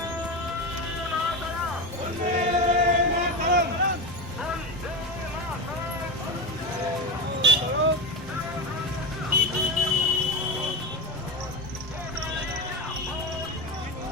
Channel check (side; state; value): both; normal; correlation 0.20